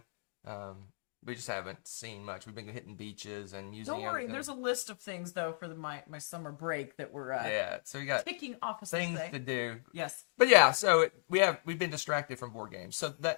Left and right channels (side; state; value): right; silent; digital silence